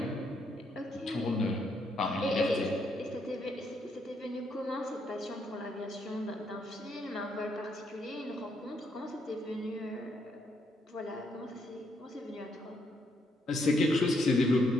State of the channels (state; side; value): normal; both; correlation 0.75